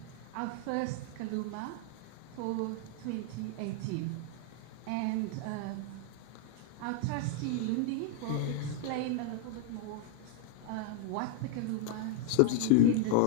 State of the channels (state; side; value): different; both; correlation 0.00